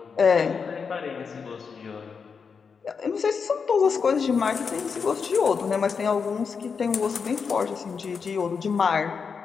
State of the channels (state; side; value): quieter; right; 5.7 dB